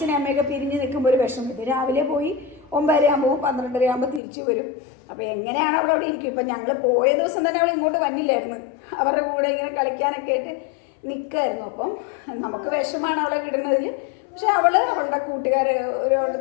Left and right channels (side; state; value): right; drops out; at 4.2 s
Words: അമ്മയൊക്കെ പിരിഞ്ഞ് നിൽക്കുമ്പോൾ ഒരു വിഷമം. ഇത് രാവിലെ പോയി 9:30 ആകുമ്പോൾ 12:30 ആകുമ്പോൾ തിരിച്ചു വരും. അപ്പോൾ എങ്ങനെയാണ് അവിടെ ഇരിക്കും. ഇപ്പം ഞങ്ങൾ പോയ ദിവസം തന്നെ അവൾ ഇങ്ങോട്ട് വന്നില്ലായിരുന്നു. അവരുടെ കൂടെ ഇങ്ങനെ കളിക്കാനൊക്കെ ആയിട്ട് നിൽക്കായിരുന്നു. അപ്പം നമുക്ക് വിഷമാണ് അവളെ വിടുന്നതിൽ. പക്ഷെ അവളുടെ കൂട്ടുകാർ ഓരോ